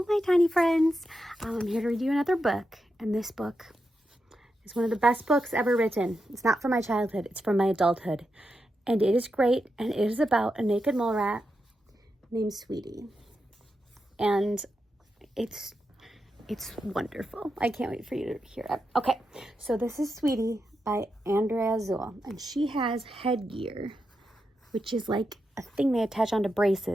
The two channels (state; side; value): normal; both; correlation 0.87